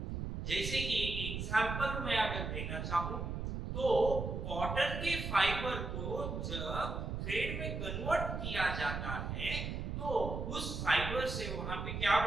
जैसे कि एक एग्जांपल मैं अगर देना चाहूं तो कॉटन के फाइबर को जब थ्रेड में कन्वर्ट किया जाता है तो उस फाइबर से वहां पे क्या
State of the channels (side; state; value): right; noise; rumble, 4 dB below the sound